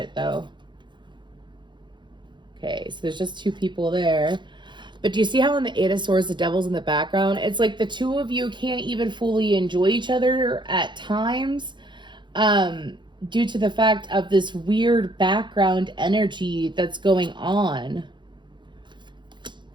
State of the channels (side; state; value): left; late; 0.23 ms